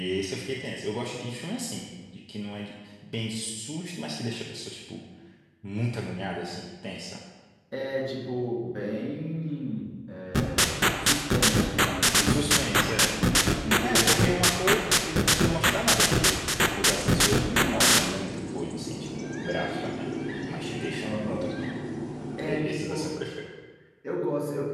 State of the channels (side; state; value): both; identical; correlation 1.00